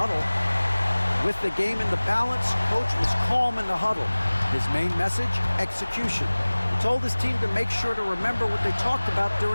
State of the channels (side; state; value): both; inverted; correlation -1.00